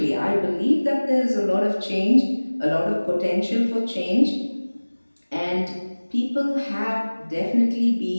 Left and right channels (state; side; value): inverted; both; correlation -1.00